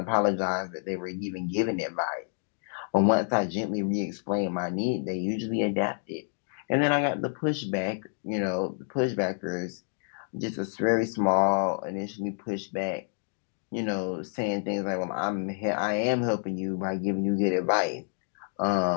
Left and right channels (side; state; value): right; silent; 59 dB below the other